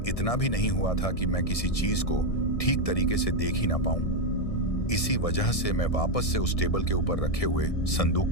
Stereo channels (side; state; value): right; late; 1.6 ms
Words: इतना भी नहीं हुआ था कि मैं किसी चीज को ठीक तरीके से देख ही ना पाऊं। इसी वजह से मैं वापस से उस टेबल के ऊपर रखे हुए संदूक